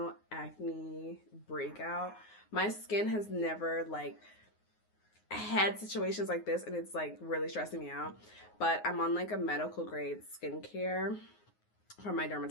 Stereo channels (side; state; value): right; late; 9.6 ms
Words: acne breakout. My skin has never like had situations like this, and it's like really stressing me out. But I'm on like a medical grade skincare from my